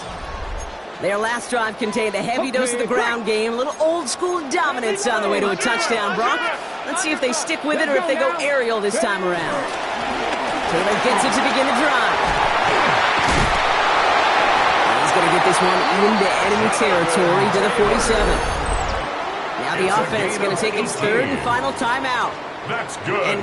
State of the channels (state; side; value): identical; both; correlation 1.00